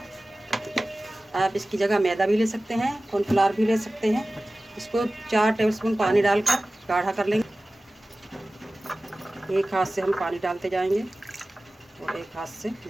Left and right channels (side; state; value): both; normal; correlation 0.97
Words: आप इसकी जगह मैदा भी ले सकते हैं, कॉर्नफ्लावर भी ले सकते हैं। इसको 4 टेबलस्पून पानी डालकर गाढ़ा कर लेंगे। एक हाथ से हम पानी डालते जाएंगे और एक हाथ से